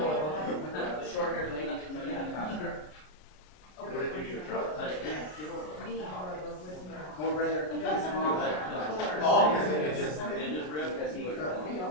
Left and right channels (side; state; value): right; late; 33 ms